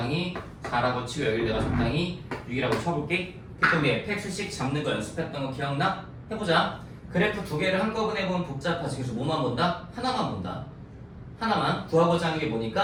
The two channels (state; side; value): identical; both; correlation 1.00